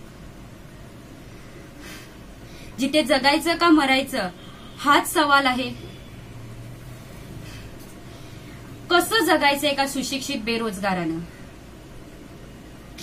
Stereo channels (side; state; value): both; identical; correlation 1.00